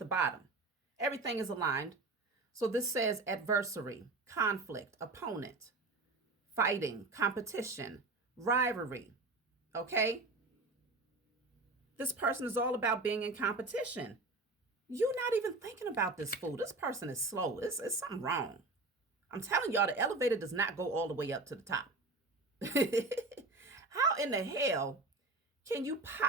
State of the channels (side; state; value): left; quieter; 3.2 dB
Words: bottom. Everything is aligned. So this says adversary, conflict, opponent, fighting, competition, rivalry. Okay? This person is all about being in competition. You're not even thinking about this fool. This person is slow. It's something wrong. I'm telling y'all, the elevator does not go all the way up to the top. How in the hell can you